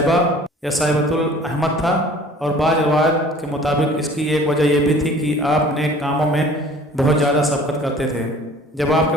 या सैबतुल अहमद था और बाज़ रवायत के मुताबिक इसकी एक वजह यह भी थी कि आप नेक कामों में बहुत ज़्यादा सबकत करते थे। जब आपके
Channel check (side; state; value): both; normal; correlation 0.49